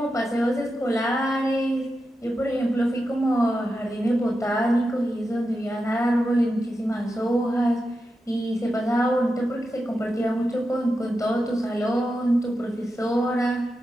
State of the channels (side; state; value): both; normal; correlation 0.89